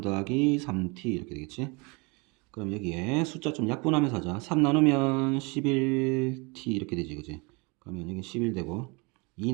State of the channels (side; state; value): left; quieter; 29.3 dB